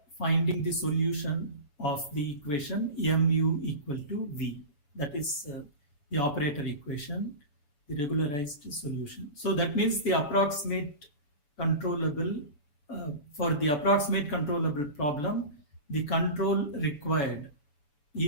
finding the solution of the equation mu equal to V. That is the operator equation, the regularized solution. So that means the approximate controllable, for the approximate controllable problem, the control required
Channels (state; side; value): late; right; 7.0 ms